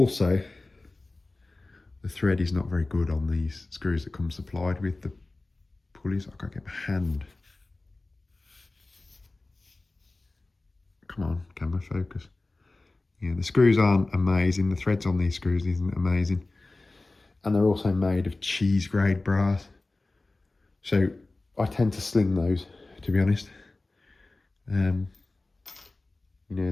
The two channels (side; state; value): right; quieter; 3.2 dB